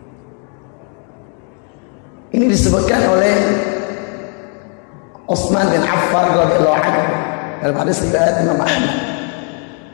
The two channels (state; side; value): quieter; right; 39.5 dB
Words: Ini disebutkan oleh Utsman bin Affan radhiyallahu anhu dalam hadis riwayat Imam Ahmad.